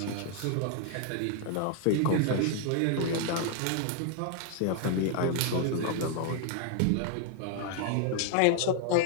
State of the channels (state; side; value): different; both; correlation 0.00